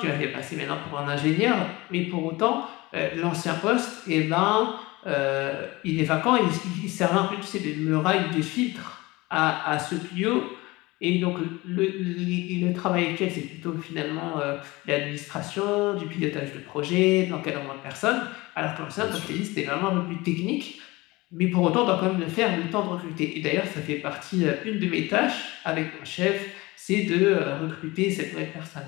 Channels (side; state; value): right; quieter; 21.8 dB